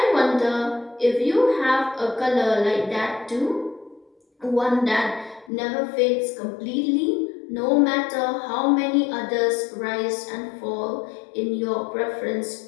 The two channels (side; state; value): right; drops out; at 5.5 s